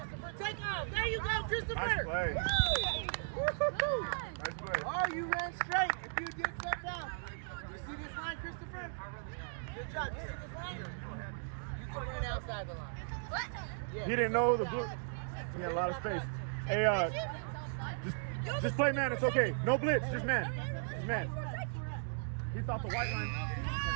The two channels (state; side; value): silent; left; digital silence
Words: Take off. There you go, Christopher. Nice play. Woo! Nice play. Oh, you ran straight. If you get stepped out. You see this line, Christopher? Good job. You see this line? You can run outside the line. Yeah. He didn't know the blue. He had a lot of space. Hey, just play man. It's okay. No blitz. Just man. Just man. He thought the white line.